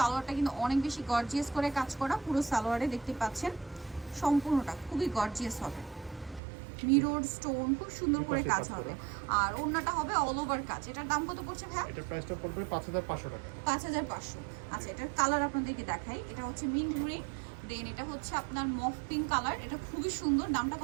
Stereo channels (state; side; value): drops out; left; at 6.4 s